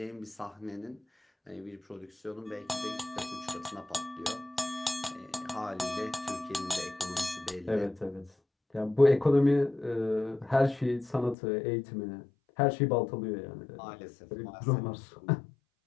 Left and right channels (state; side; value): drops out; right; at 11.4 s